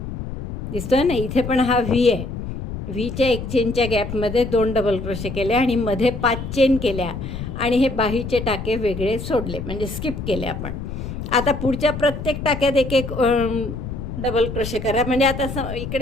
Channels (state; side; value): noise; left; rumble, 7 dB below the sound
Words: दिसतोय ना, इथे पण हा व्ही आहे. व्हीच्या एक चेनच्या गॅपमध्ये 2 डबल क्रोशे केले आणि मध्ये 5 चेन केल्या आणि हे बाहीचे टाके वेगळे सोडले, म्हणजे स्किप केले आपण. आता पुढच्या प्रत्येक टाक्यात एक एक डबल क्रोशे करा. म्हणजे आता